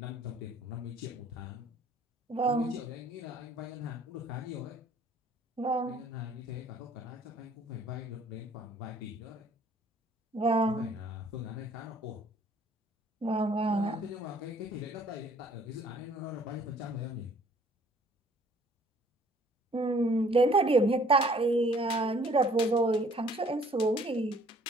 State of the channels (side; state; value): both; normal; correlation 0.58